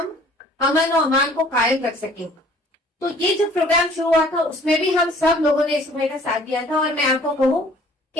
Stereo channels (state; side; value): normal; both; correlation 0.54